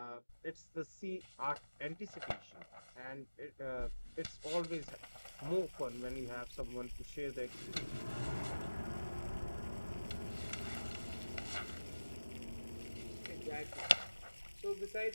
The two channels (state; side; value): inverted; both; correlation -1.00